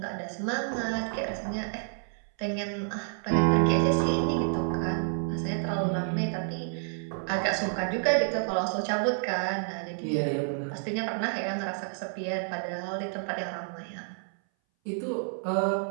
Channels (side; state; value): left; silent; 58 dB below the other